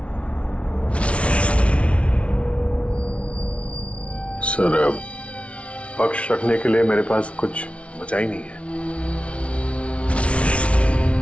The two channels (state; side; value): late; right; 0.062 ms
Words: सर, पक्ष रखने के लिए मेरे पास कुछ बचा ही नहीं है।